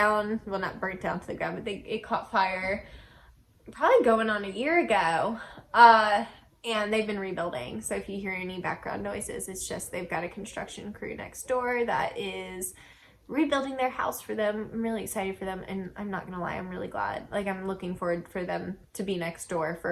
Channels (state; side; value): identical; both; correlation 1.00